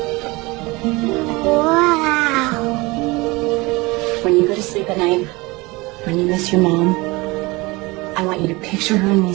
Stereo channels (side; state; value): left; quieter; 23.4 dB